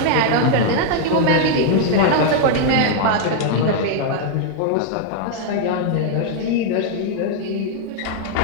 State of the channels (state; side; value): different; both; correlation 0.00